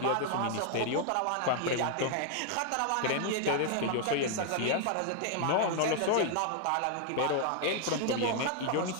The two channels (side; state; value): both; different; correlation 0.00